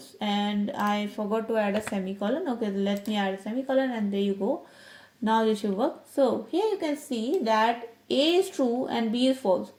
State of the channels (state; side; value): identical; both; correlation 1.00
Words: and I forgot to add a semicolon. Okay, let me add a semicolon, and there you go. Now this should work. So here you can see that A is true and B is false.